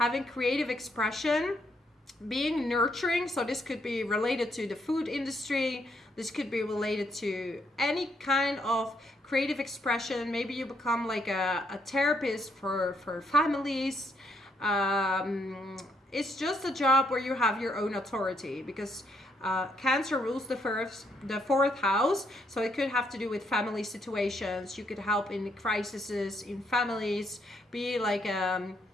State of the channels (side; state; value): both; normal; correlation 0.74